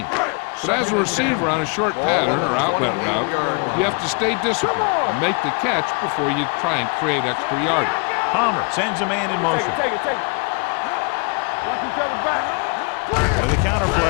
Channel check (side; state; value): right; quieter; 34.3 dB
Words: But as a receiver on a short pattern or outlet route, you have to stay disciplined and make the catch before you try and create extra yardage. Palmer sends a man in motion. Take it. Watch each other back. With a counter